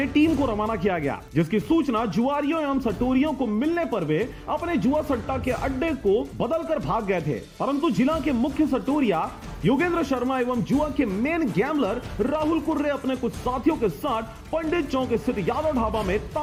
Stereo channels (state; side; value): identical; both; correlation 1.00